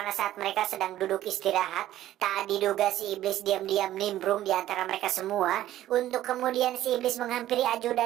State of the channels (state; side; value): quieter; left; 13.5 dB